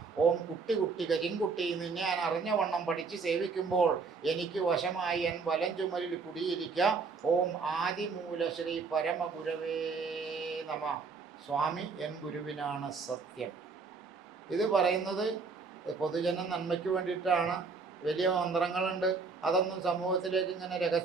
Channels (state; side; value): quieter; left; 4.7 dB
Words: ഓം കുട്ടി കുട്ടി കരിങ്കുട്ടി നിന്നെ ഞാൻ അറിഞ്ഞ വണ്ണം പഠിച്ച് സേവിക്കുമ്പോൾ എനിക്ക് വശമായി എൻ വലം ചുമലിൽ കുടിയിരിക്കുക. ഓം ആദിമൂല ശ്രീ പരമഗുരവേ നമ. സ്വാമി എൻ ഗുരുവിനാണ് സത്യം. ഇത് പറയുന്നത് പൊതുജന നന്മയ്ക്ക് വേണ്ടിയിട്ടാണ്. വലിയ മന്ത്രങ്ങളുണ്ട്, അതൊന്നും സമൂഹത്തിലേക്ക് ഇങ്ങനെ